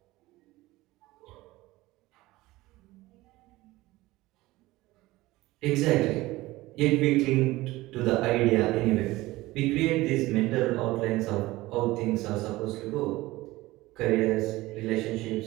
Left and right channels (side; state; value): left; quieter; 18.8 dB